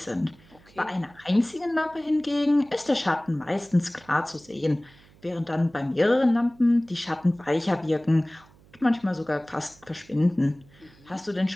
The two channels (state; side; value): noise; right; hum, 27 dB below the sound